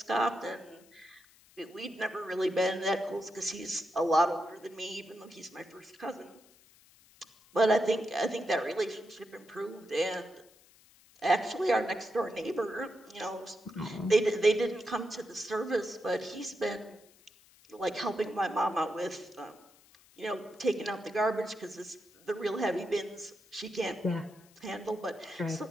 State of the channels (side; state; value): left; noise; hiss, 27 dB below the sound